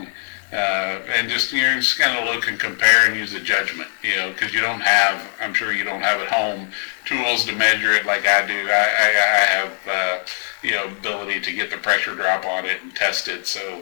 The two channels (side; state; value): right; silent; 58 dB below the other